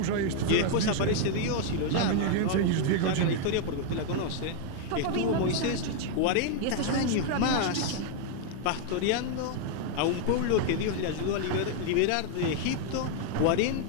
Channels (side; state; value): both; different; correlation 0.00